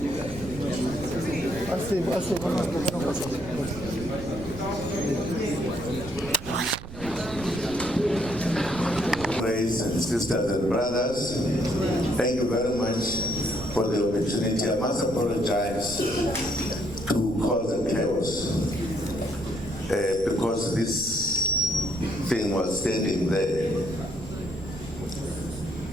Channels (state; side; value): noise; right; rumble, 13 dB below the sound